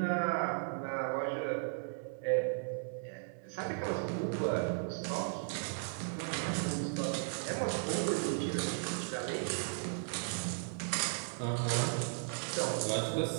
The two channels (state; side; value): silent; left; 54 dB below the other